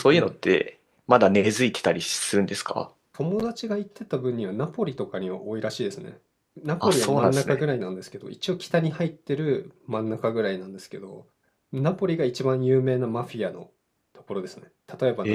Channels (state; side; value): identical; both; correlation 1.00